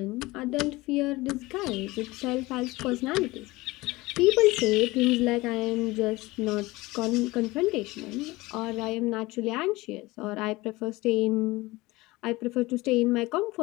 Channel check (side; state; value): right; quieter; 20.8 dB